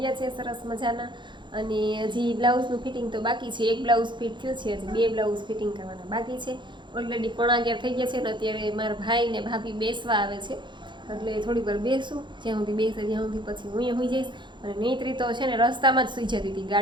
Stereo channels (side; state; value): left; late; 0.23 ms